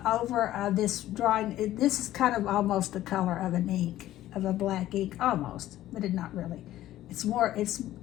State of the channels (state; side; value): quieter; right; 14.0 dB